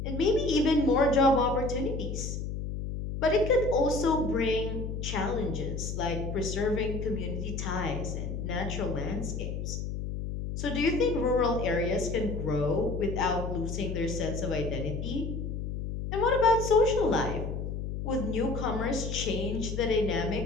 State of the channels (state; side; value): noise; left; hum, 4 dB below the sound